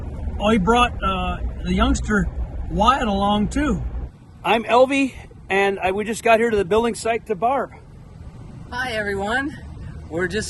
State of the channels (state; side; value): identical; both; correlation 1.00